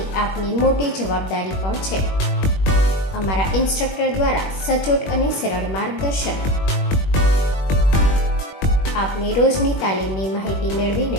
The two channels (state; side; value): late; right; 21 ms